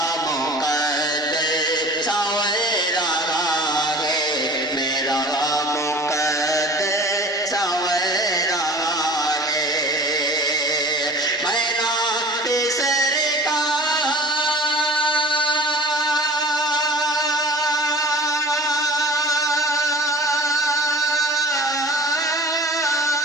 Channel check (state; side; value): normal; both; correlation 0.44